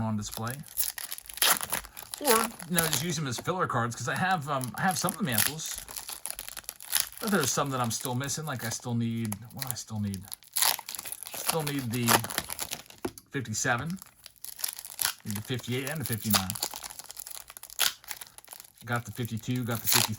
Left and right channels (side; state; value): both; identical; correlation 1.00